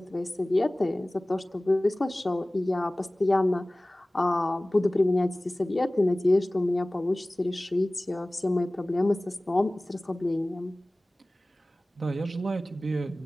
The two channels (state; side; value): normal; both; correlation 0.98